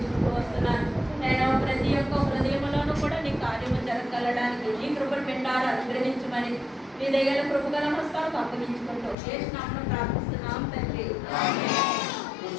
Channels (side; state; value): right; drops out; at 9.2 s